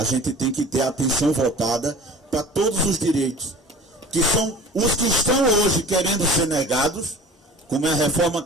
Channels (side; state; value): both; normal; correlation 0.43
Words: gente tem que ter a atenção voltada para todos os direitos, que são os que estão hoje querendo ser negados, como é a reforma